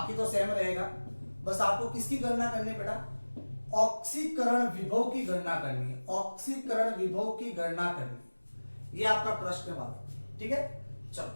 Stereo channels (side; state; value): both; inverted; correlation -1.00